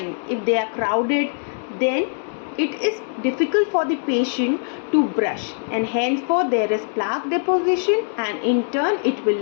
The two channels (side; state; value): right; silent; digital silence